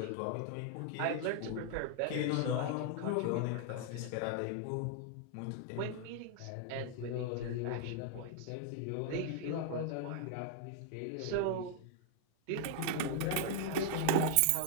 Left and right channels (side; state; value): both; different; correlation 0.00